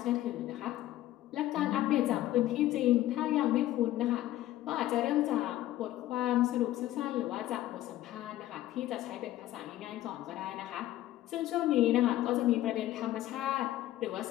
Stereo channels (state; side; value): quieter; right; 14.5 dB